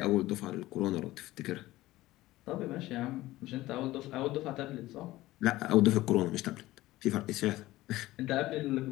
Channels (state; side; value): quieter; right; 17.2 dB